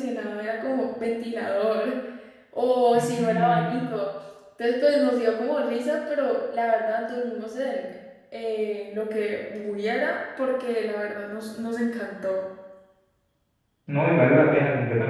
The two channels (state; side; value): identical; both; correlation 1.00